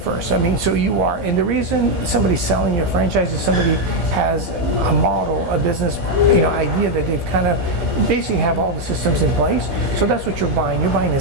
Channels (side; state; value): left; late; 15 ms